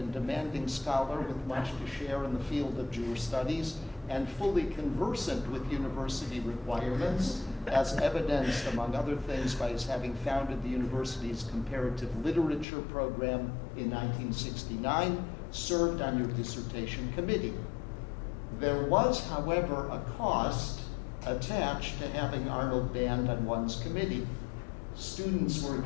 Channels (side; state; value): right; drops out; at 12.7 s